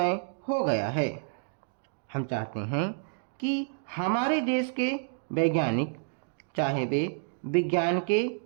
हो गया है। हम चाहते हैं कि हमारे देश के वैज्ञानिक, चाहे वे विज्ञान के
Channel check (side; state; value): left; silent; digital silence